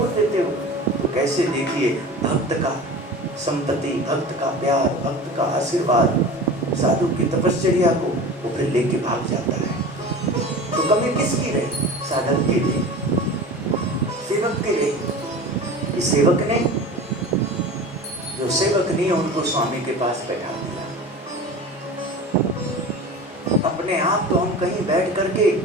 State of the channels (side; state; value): both; normal; correlation 0.35